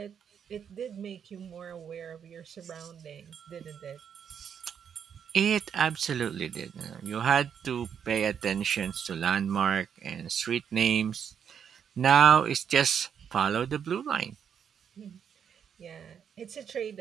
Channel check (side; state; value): left; quieter; 7.9 dB